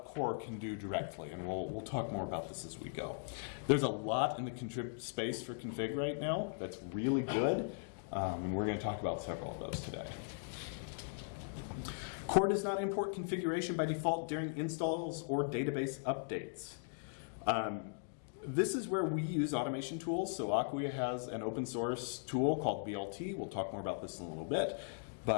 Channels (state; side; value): silent; right; digital silence